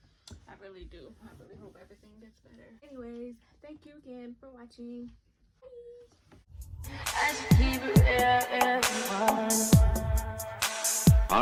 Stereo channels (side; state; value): both; identical; correlation 1.00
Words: I really do. I really hope everything gets better. Anyways, thank you again for watching.